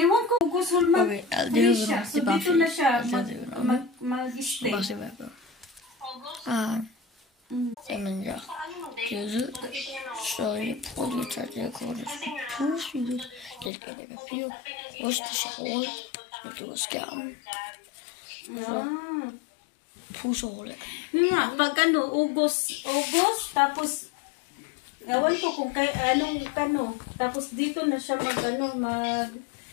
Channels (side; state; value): right; drops out; at 13.7 s